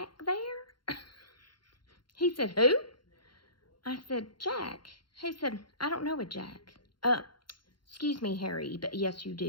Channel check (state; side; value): late; right; 0.72 ms